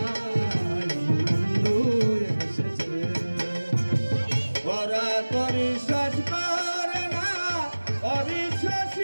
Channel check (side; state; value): both; inverted; correlation -1.00